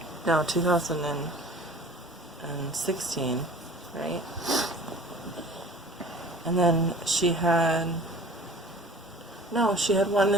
No, 2016, right? And then she had one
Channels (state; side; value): normal; both; correlation 0.45